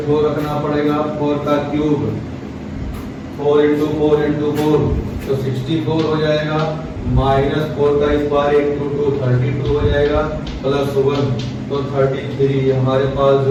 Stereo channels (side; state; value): both; identical; correlation 1.00